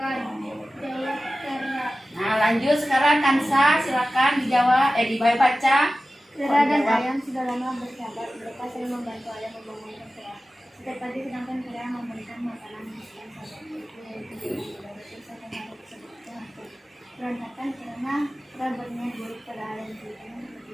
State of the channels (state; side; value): normal; both; correlation 0.95